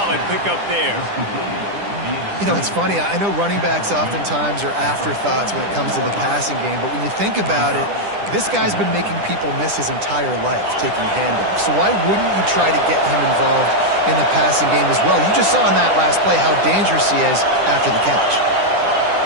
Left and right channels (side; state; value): left; late; 10 ms